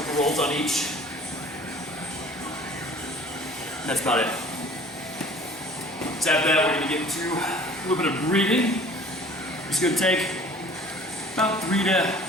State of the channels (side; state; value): both; normal; correlation 0.49